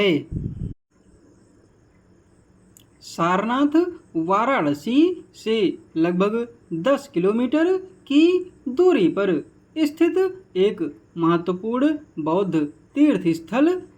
सारनाथ वाराणसी से लगभग 10 किलोमीटर की दूरी पर स्थित एक महत्वपूर्ण बौद्ध तीर्थ स्थल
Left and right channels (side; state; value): both; identical; correlation 1.00